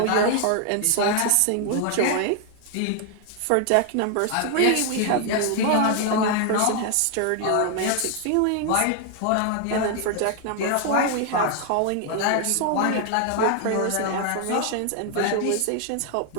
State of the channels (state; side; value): different; both; correlation 0.00